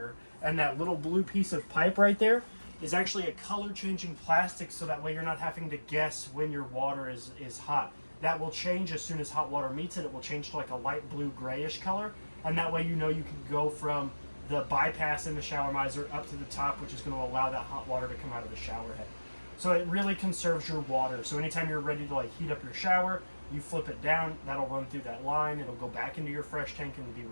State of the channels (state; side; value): inverted; both; correlation -1.00